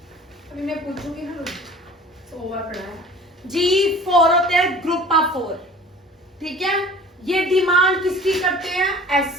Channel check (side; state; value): both; normal; correlation 0.45